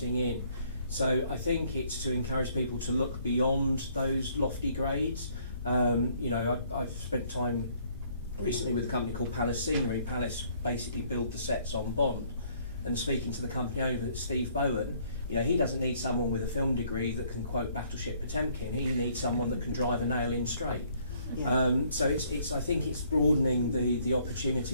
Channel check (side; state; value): both; inverted; correlation -0.64